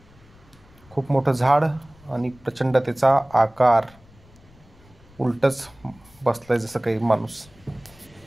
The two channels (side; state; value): left; noise; rumble, 27 dB below the sound